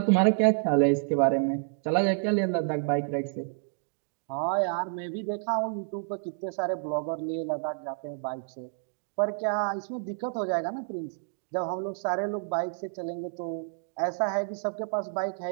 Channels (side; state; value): left; silent; digital silence